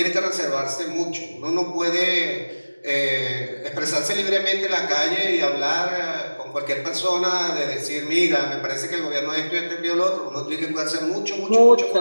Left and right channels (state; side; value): inverted; both; correlation -1.00